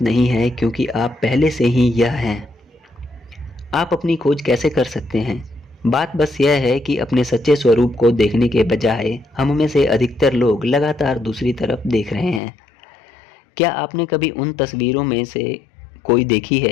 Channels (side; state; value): right; drops out; at 12.4 s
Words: नहीं है, क्योंकि आप पहले से ही यह हैं। आप अपनी खोज कैसे कर सकते हैं? बात बस यह है कि अपने सच्चे स्वरूप को देखने के बजाय हम में से अधिकतर लोग लगातार दूसरी तरफ देख रहे हैं। क्या आपने कभी उन तस्वीरों में से कोई देखी